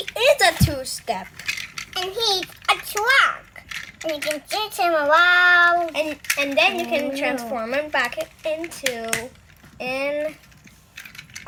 a 2-step. And he's a truck. And you can chase him around. And then you can transform him back into an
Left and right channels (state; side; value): identical; both; correlation 1.00